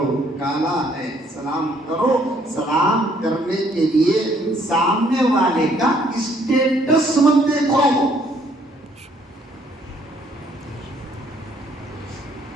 کالا ہے سلام کرو۔ سلام کرنے کے لیے سامنے والے کا اسٹیٹس مت دیکھو،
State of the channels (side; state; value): both; normal; correlation 0.65